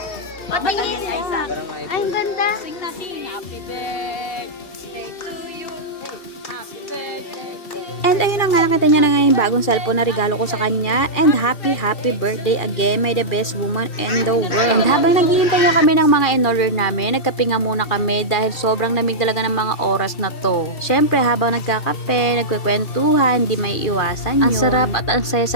Patingin! Parang Ay, iPhone. ang ganda! Sing natin, happy birthday to you. Happy birthday to you. And ayun na nga, nakita niya na nga yung bagong cellphone na regalo ko sa kanya. And happy birthday again. May the best woman in the world. And habang naghihintay nga kami ng mga in-order namin, nagkape nga muna kami dahil sobrang lamig talaga ng mga oras na to. Syempre, habang nagkakape, nagkwekwentuhan, hindi may iwasan yun. Ang sarap at ang saya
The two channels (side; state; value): right; late; 2.7 ms